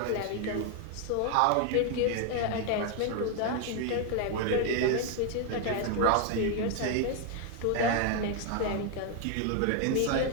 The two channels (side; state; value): both; different; correlation 0.01